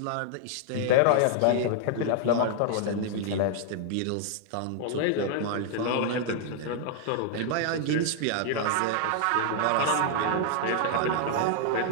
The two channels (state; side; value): different; both; correlation 0.00